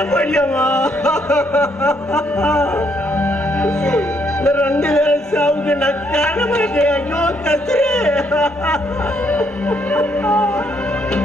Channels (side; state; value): both; normal; correlation 0.72